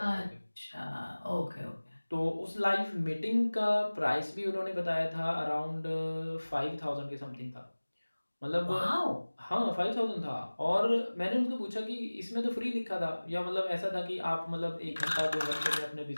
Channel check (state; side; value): inverted; both; correlation -1.00